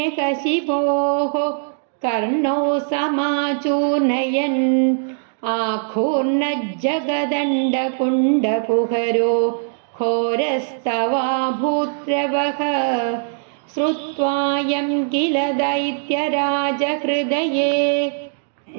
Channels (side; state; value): left; silent; digital silence